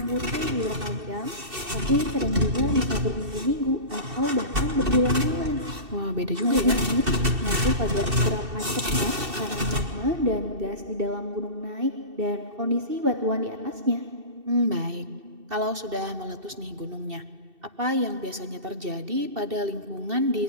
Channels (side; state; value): left; late; 2.7 ms